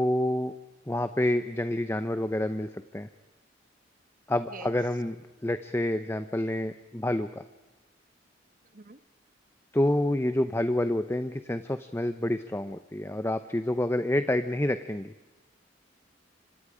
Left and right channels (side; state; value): both; normal; correlation 0.87